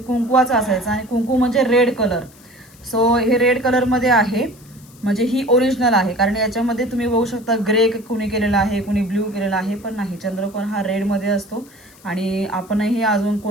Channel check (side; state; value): left; noise; hiss, 26 dB below the sound